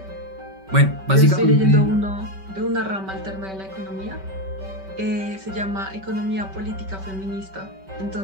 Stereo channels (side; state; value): left; late; 5.2 ms